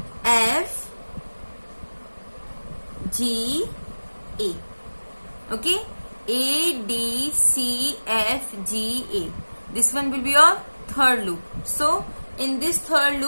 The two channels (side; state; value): both; inverted; correlation -1.00